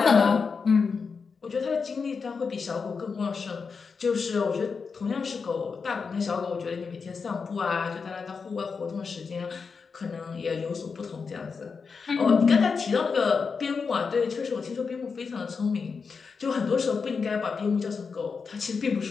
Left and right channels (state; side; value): quieter; right; 5.3 dB